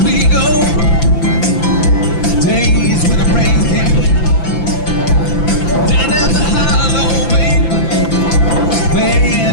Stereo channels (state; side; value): late; right; 5.9 ms